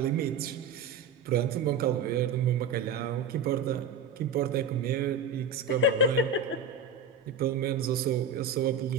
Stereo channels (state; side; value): quieter; left; 4.9 dB